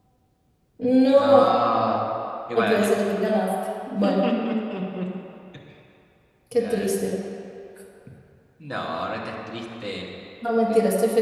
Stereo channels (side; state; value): both; identical; correlation 1.00